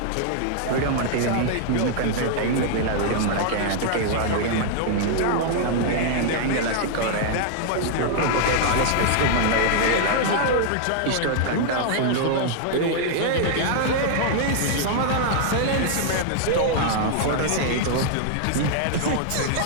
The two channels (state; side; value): different; both; correlation -0.01